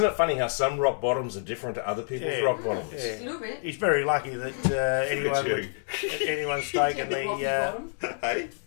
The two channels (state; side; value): silent; right; digital silence